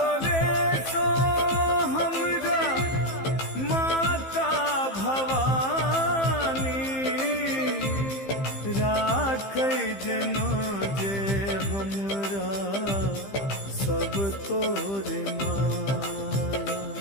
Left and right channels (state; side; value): late; right; 15 ms